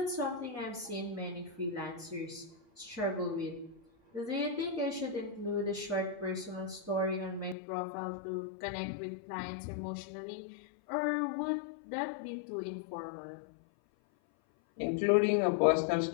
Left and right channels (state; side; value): drops out; right; at 7.6 s